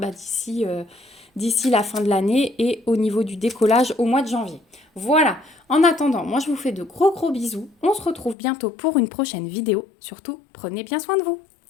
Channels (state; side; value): drops out; right; at 8.3 s